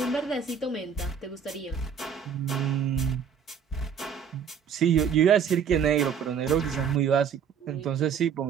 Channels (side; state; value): left; quieter; 7.2 dB